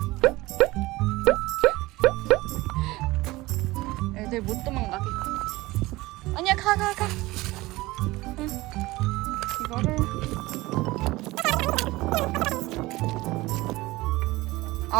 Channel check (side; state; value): left; quieter; 19.8 dB